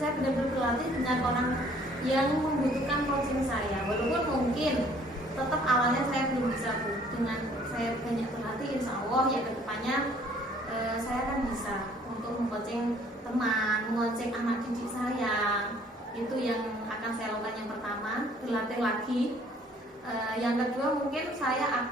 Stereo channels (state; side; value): normal; both; correlation 0.58